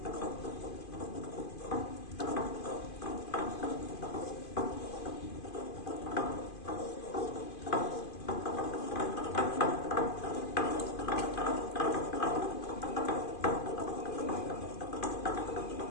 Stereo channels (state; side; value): late; right; 2.5 ms